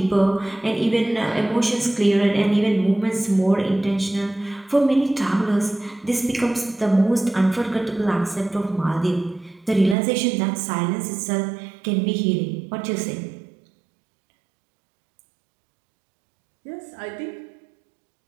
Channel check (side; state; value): left; drops out; at 10.0 s